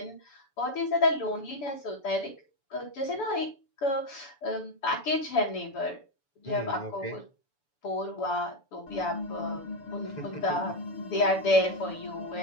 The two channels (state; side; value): late; right; 7.0 ms